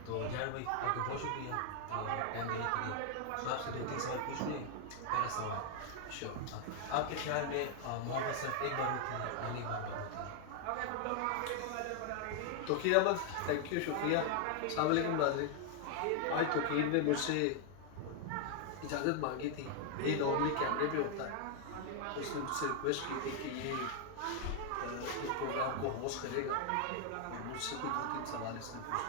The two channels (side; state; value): both; different; correlation 0.00